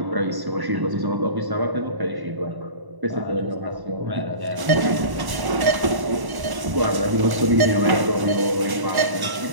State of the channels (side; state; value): left; late; 1.0 ms